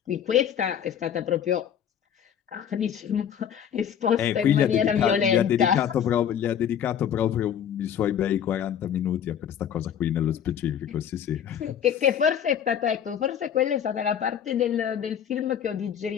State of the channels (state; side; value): quieter; right; 8.9 dB